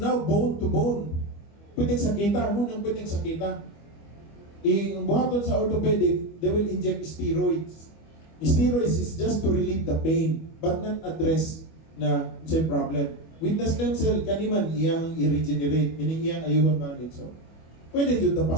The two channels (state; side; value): late; right; 25 ms